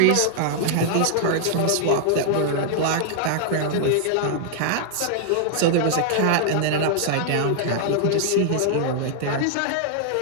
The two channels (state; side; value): different; both; correlation -0.01